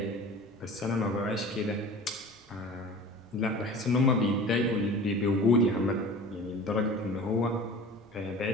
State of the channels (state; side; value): normal; both; correlation 0.39